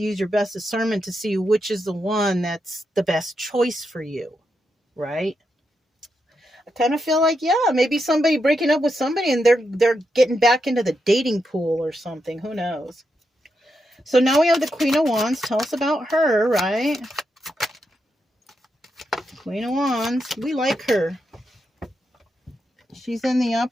use your best discernment to see which is the one that's the best choice for you, right? I kind of feel like, yeah, maybe somebody breaking up with somebody and they're getting back into the dating pool or something. Who knows? So now we have the Queen of Wands. Tell us about her, right? Queen of Wands. We like her. She's in the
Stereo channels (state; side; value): normal; both; correlation 0.84